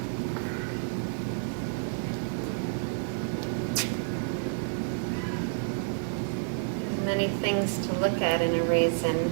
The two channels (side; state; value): left; silent; 57 dB below the other